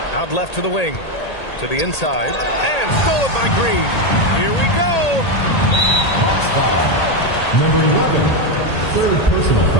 Out left to the wing, to the inside, and stolen by Green. Here we go. Foul. Number 11. 3rd personal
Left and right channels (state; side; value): late; right; 1.8 ms